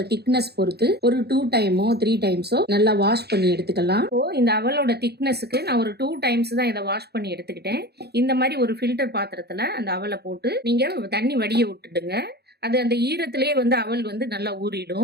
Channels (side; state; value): left; late; 0.47 ms